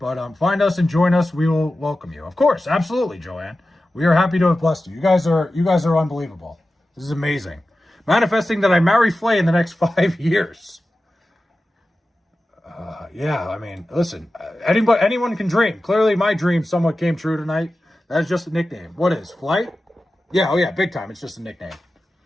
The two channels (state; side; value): normal; both; correlation 0.94